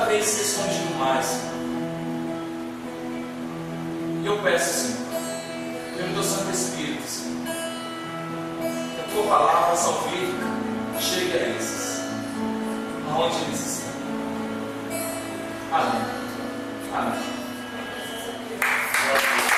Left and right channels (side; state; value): both; identical; correlation 1.00